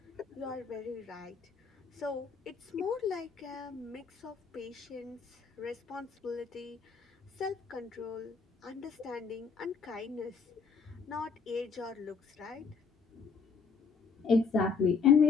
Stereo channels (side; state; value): right; quieter; 5.4 dB